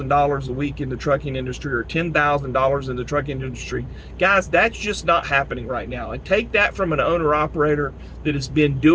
a week in the trucking industry or $10,000 in the trucking industry. Guys, that's just not happening right now. And take that from an owner-operator that has been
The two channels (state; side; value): identical; both; correlation 1.00